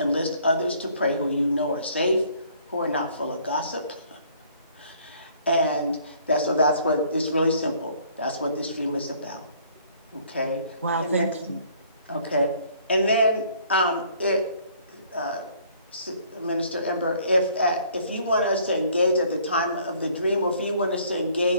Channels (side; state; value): both; inverted; correlation -0.59